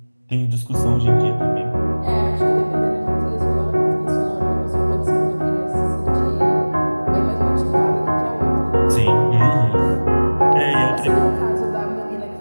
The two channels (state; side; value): inverted; both; correlation -1.00